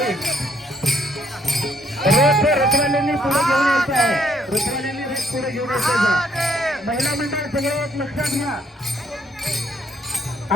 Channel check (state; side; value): normal; both; correlation 0.68